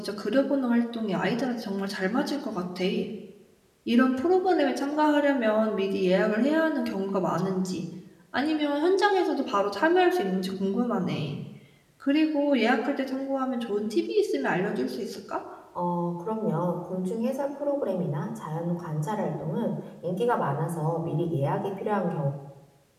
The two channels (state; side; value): identical; both; correlation 1.00